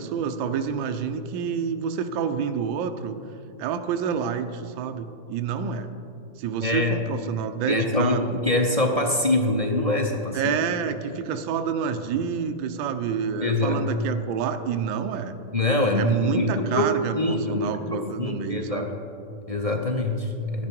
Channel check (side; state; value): left; late; 1.7 ms